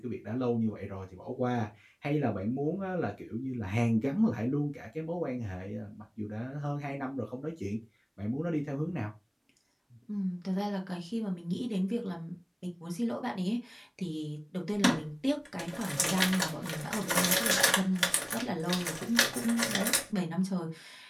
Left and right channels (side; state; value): both; identical; correlation 1.00